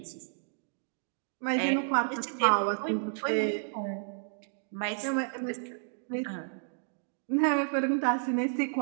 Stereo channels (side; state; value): left; silent; digital silence